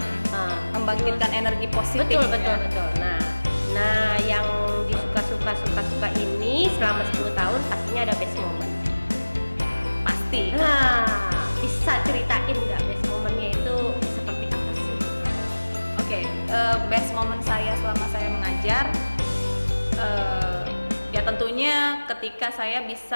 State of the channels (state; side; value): inverted; both; correlation -1.00